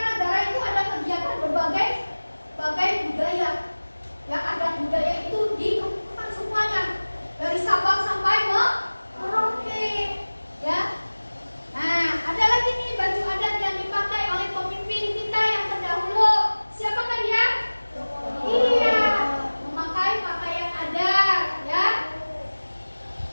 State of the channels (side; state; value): both; inverted; correlation -1.00